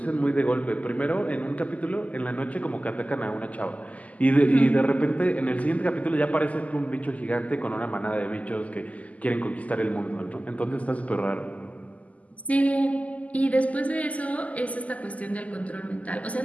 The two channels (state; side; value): late; right; 0.072 ms